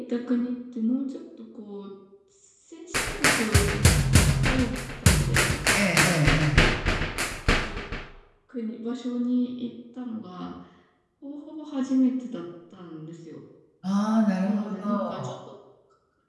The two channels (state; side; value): identical; both; correlation 1.00